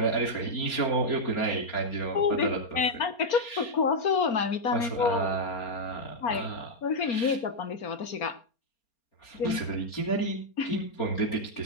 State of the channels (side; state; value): right; late; 4.3 ms